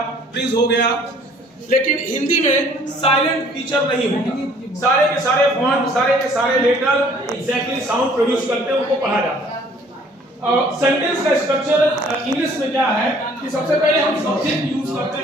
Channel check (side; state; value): both; normal; correlation 0.57